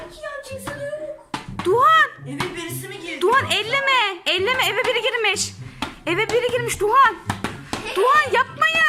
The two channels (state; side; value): identical; both; correlation 1.00